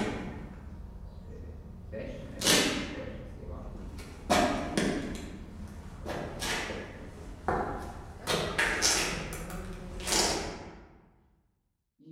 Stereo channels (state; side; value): identical; both; correlation 1.00